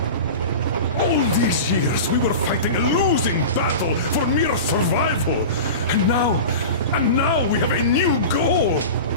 All these years, we were fighting a losing battle for mere survival. And now we have a new goal.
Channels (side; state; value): both; inverted; correlation -0.30